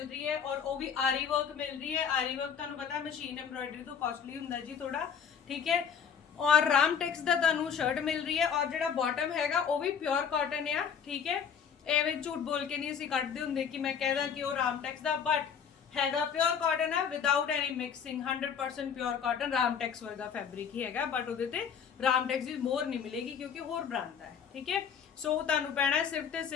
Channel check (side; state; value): right; quieter; 7.2 dB